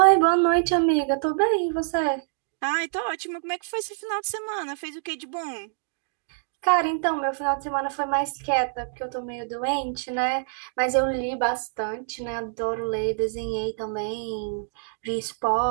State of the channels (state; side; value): silent; left; digital silence